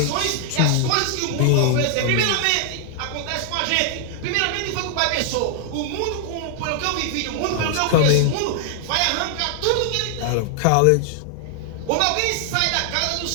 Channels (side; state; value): both; different; correlation 0.00